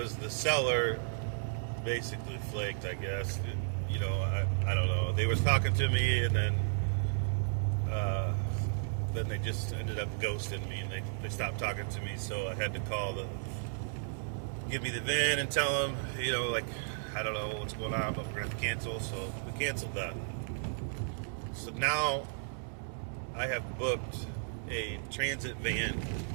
the seller basically flaked, I guess. You know, I don't know. They was talking to me, and then they just ended up ghosting me, and they stopped talking to me. So I had to call Give Me the VIN and tell them, you know, like, I don't know what's going on, but we're gonna have to cancel. So we canceled that. So now I have booked a transit van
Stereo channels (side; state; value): left; silent; digital silence